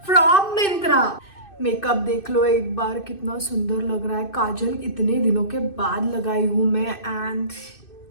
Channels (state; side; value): late; right; 2.6 ms